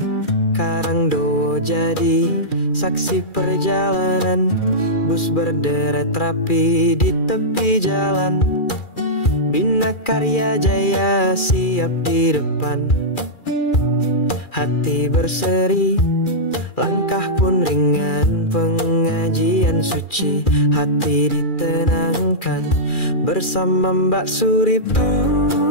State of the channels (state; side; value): late; right; 2.4 ms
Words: Karangdowo jadi saksi perjalanan. Bus berderet rapi di tepi jalan. Bina Karya Jaya siap di depan. Hati berseri, langkah pun ringan. Pengajian suci, hati ditenangkan. Bersama Mbak Suriptur